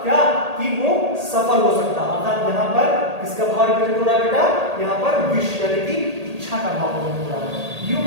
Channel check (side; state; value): left; late; 1.8 ms